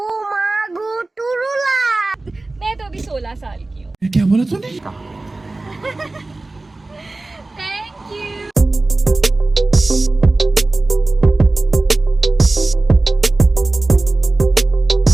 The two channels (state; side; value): quieter; left; 3.1 dB